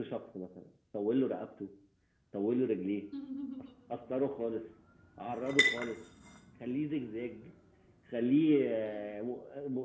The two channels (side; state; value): both; identical; correlation 1.00